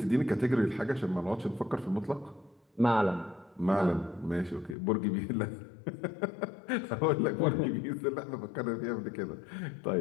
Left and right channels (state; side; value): drops out; right; at 4.8 s